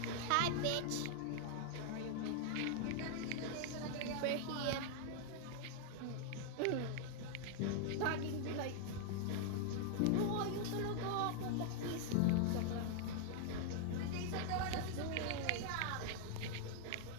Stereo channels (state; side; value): different; both; correlation 0.00